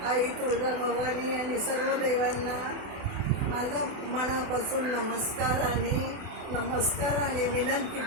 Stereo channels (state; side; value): late; left; 28 ms